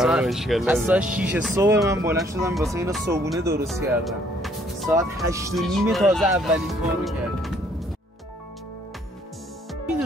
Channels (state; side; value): normal; both; correlation 0.64